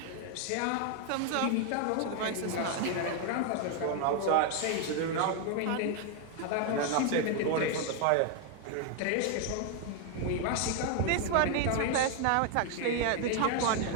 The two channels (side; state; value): both; different; correlation 0.01